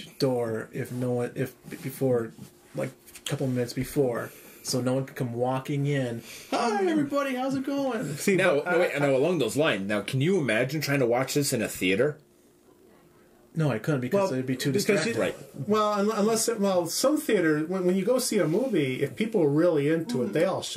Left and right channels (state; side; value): identical; both; correlation 1.00